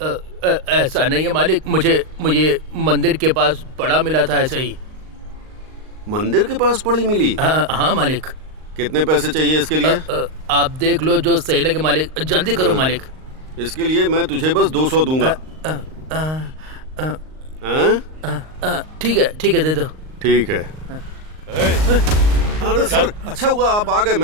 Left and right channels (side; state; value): left; late; 38 ms